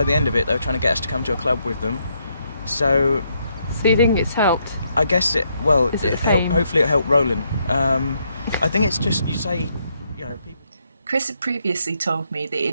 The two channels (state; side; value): inverted; both; correlation -0.76